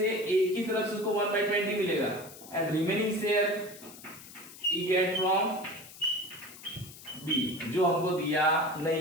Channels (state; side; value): noise; left; hiss, 17 dB below the sound